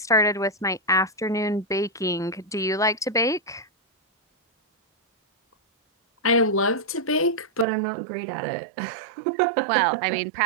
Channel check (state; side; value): drops out; left; at 7.7 s